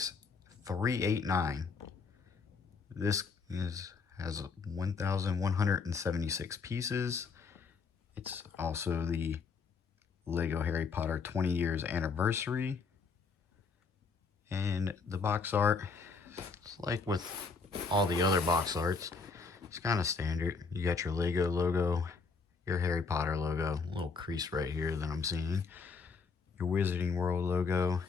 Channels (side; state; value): right; quieter; 4.9 dB